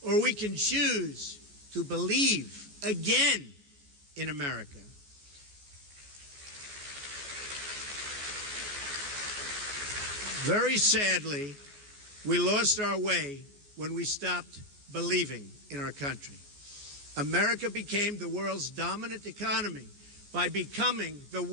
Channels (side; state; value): left; late; 14 ms